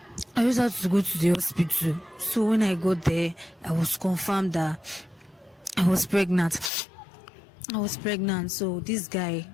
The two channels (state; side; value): drops out; right; at 6.7 s